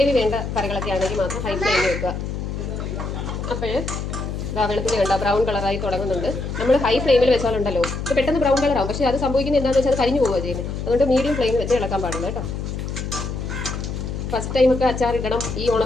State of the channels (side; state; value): left; noise; hum, 5 dB below the sound